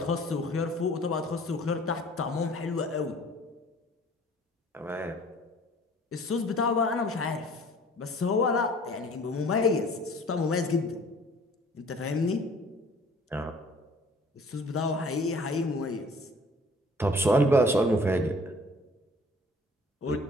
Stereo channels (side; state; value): both; normal; correlation 0.51